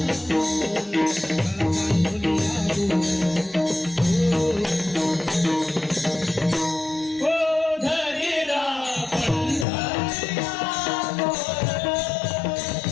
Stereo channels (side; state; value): right; drops out; at 9.7 s